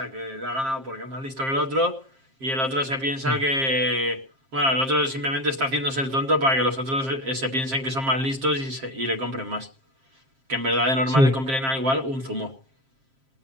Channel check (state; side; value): late; left; 7.5 ms